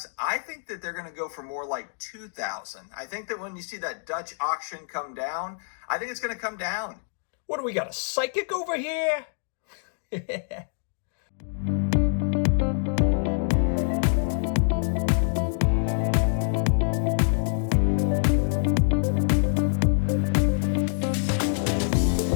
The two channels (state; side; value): silent; right; digital silence